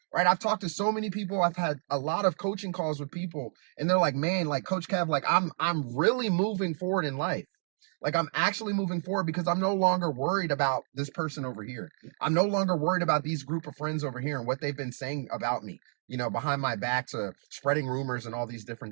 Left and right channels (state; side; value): silent; left; 58 dB below the other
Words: Right. I've talked to so many people. I've had a lot of coaching calls with people, and they're like, man, like Coach Kev, like I'm really moving forward in life. Like I'm actually moving forward because I'm no longer worried about this person over here. I'm no longer worried about these group of friends over here and what they've been saying about me, behind my back, to spreading rumors and all these